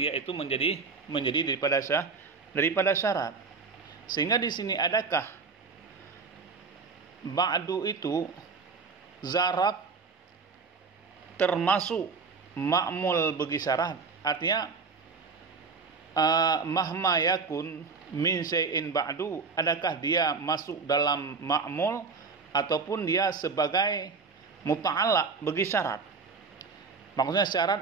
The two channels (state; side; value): quieter; left; 4.8 dB